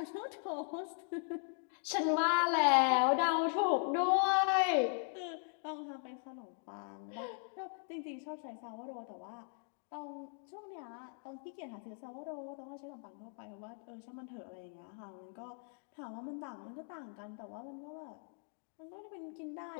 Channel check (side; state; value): right; silent; 52 dB below the other